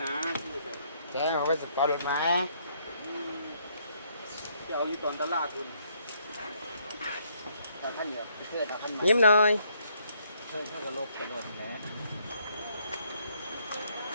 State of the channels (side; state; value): both; inverted; correlation -0.70